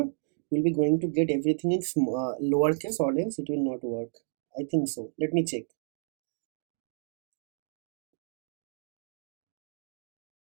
we'll be going to get everything in lowercase, or else it will not work. I think so. Let me check.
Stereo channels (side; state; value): left; silent; digital silence